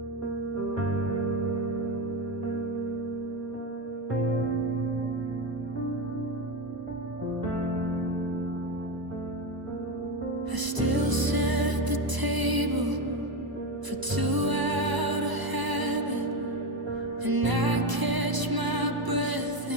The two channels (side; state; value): left; late; 1.0 ms